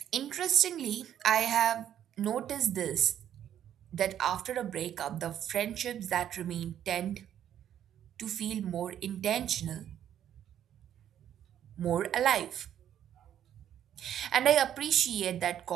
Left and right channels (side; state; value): left; quieter; 10.3 dB